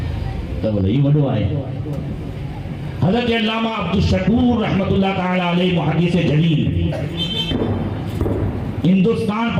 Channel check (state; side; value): identical; both; correlation 1.00